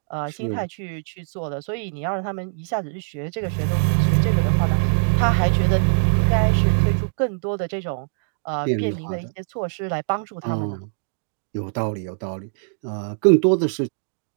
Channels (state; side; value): silent; left; digital silence